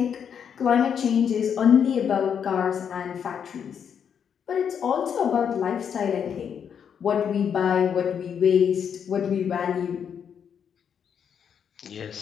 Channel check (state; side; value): quieter; right; 7.7 dB